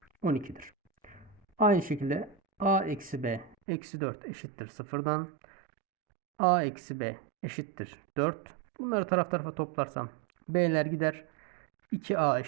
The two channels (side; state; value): left; drops out; at 3.6 s